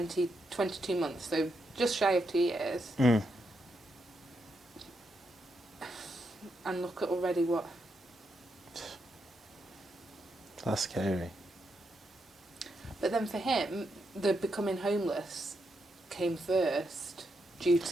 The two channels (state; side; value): normal; both; correlation 0.82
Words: months, so just shy of 2 years. Mm. And look at already what... That's scary. But then for him, the becoming homeless came first due